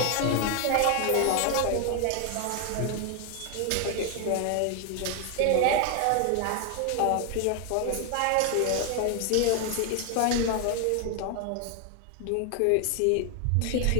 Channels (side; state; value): both; different; correlation 0.00